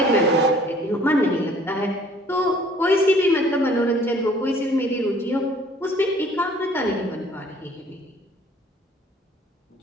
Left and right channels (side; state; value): both; normal; correlation 0.56